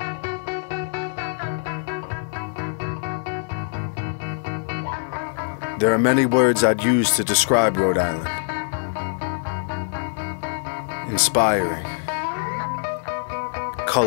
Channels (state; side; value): silent; right; 60 dB below the other